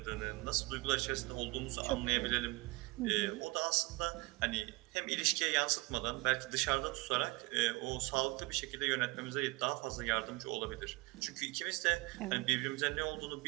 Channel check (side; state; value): left; quieter; 23.9 dB